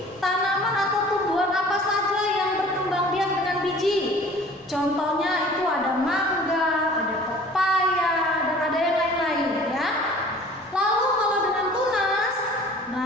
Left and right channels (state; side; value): normal; both; correlation 0.48